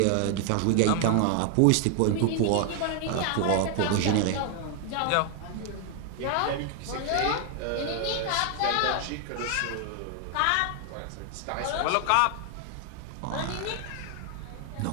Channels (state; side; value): different; both; correlation 0.00